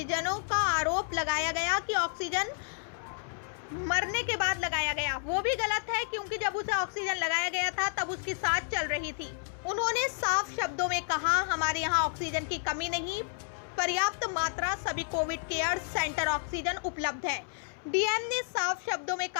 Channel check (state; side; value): silent; right; 57 dB below the other